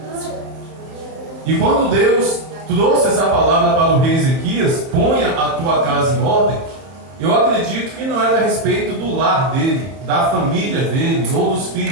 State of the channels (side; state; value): left; late; 31 ms